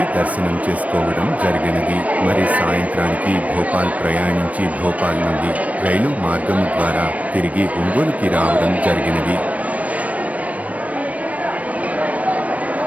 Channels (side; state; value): left; late; 0.068 ms